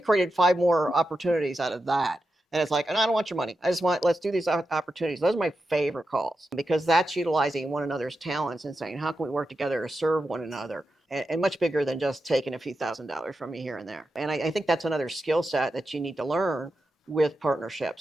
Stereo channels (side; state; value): both; normal; correlation 0.89